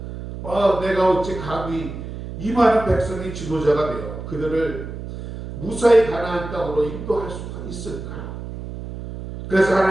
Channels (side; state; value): right; noise; hum, 9 dB below the sound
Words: 내가 어찌 감히 이 많은 백성이 지도자가 되어 그들을 무사히 가나안 땅으로 인도할 수가 있을까? 그래서